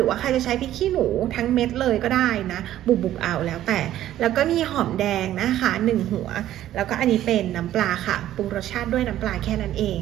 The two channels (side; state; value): left; quieter; 12.8 dB